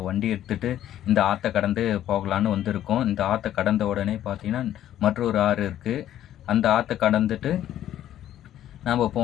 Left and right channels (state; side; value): quieter; right; 11.9 dB